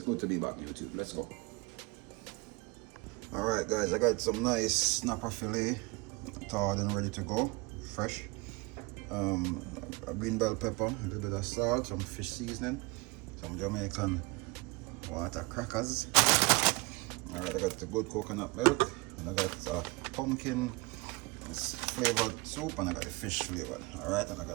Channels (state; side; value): quieter; left; 25.5 dB